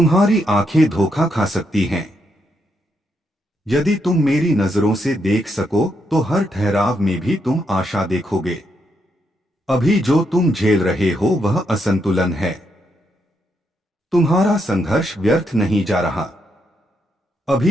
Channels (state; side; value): normal; both; correlation 0.79